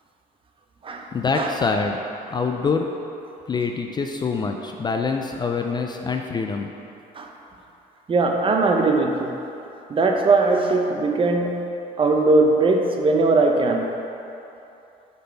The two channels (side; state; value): both; normal; correlation 0.54